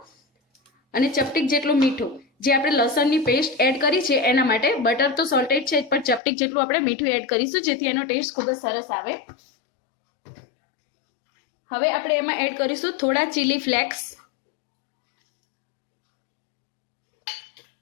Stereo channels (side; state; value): right; drops out; at 6.2 s